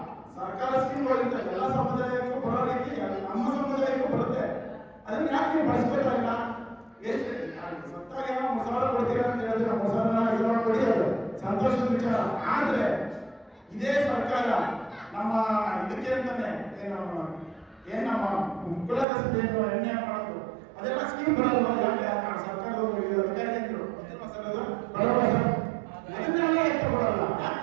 ಸರ್ಕಾರ ಸ್ಕೀಮ್ಗಳಿಂದ ಎಲ್ಲ ಸಮುದಾಯಕ್ಕೂ ಬರೋ ರೀತಿ ನಮ್ಮ ಸಮುದಾಯಕ್ಕೂ ಬರುತ್ತೆ. ಅದನ್ನ ಯಾಕೆ ನೀವು ಬಳಸ್ಬೇಕಾಗಿಲ್ಲ? ಎಷ್ಟು ಸತ್ತಾಗ ಏನೋ ಮಸಾಲ ಕೊಡ್ತೀರಾ ಅಂತ ಹೇಳಿದ್ರೆ ಮಸಾಲ ಕೊಡಿ, ಅದು ಸಂತೋಷದ ವಿಚಾರ. ಆದ್ರೆ ಇದೇ ಸರ್ಕಾರ ನಮ್ಮ ಇದಕ್ಕೆ ಅಂತಾನೆ ಏನ್ ನಮ್ಮ ಕುಲಕಸಬೆ ಎಣ್ಣೆ ಮಾಡೋದು, ಅದೆಲ್ಲ ಸ್ಕೀಮ್ ಬರಲ್ವಾ? ಯಾಕೆ ಸರ್ಕಾರದವರು ಅಧಿಕಾರಿಗಳು ಅದನ್ನೆಲ್ಲ ಎತ್ತ ಕೊಡಲ್ಲ, ಯಾಕೆ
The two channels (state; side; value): drops out; left; at 19.1 s